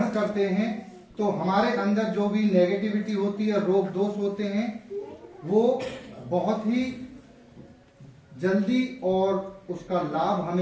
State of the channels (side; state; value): both; identical; correlation 1.00